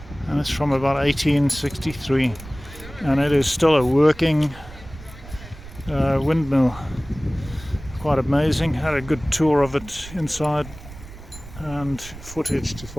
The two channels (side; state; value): right; noise; rumble, 16 dB below the sound